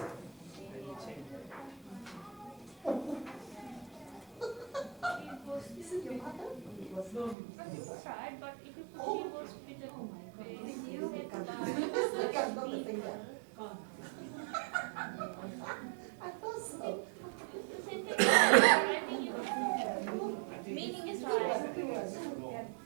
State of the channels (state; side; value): drops out; left; at 7.4 s